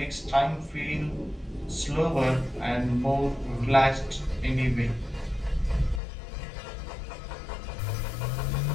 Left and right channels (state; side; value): drops out; right; at 6.0 s